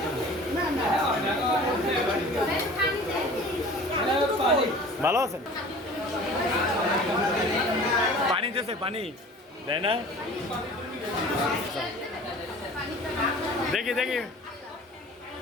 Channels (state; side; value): normal; both; correlation 0.44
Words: ভালো আছেন পানি দিয়েছে পানি দেয় না দেখি দেখি